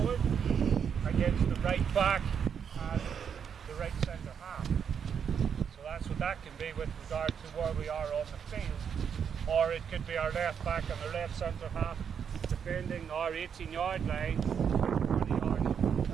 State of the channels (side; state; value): left; quieter; 7.4 dB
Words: against the right back and the right centre half. So that's what that can be with regard to where we are on the field. Or it could be our left back and our left centre half defending our 18-yard line, 20 yards,